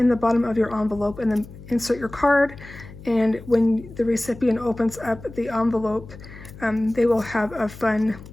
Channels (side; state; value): left; noise; hum, 17 dB below the sound